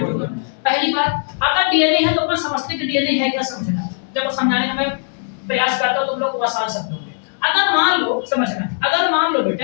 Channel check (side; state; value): right; silent; digital silence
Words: पहली बात, अगर डीएनए है तो अपन समझते कि डीएनए है क्या, समझना। जब समझाने का मैं प्रयास करता हूं तुम लोग को आसान शब्दों में। अगर मान लो, समझना, अगर मान लो